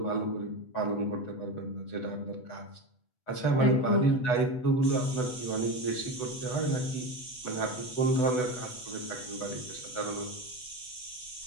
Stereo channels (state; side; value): late; right; 8.0 ms